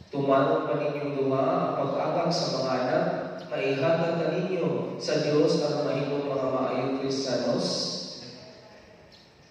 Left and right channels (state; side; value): identical; both; correlation 1.00